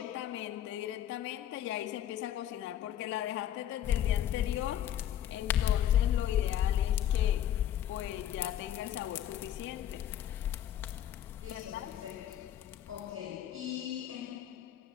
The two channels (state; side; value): quieter; right; 11.1 dB